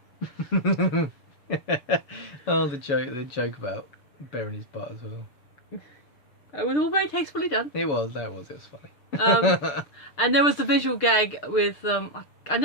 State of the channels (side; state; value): right; late; 6.7 ms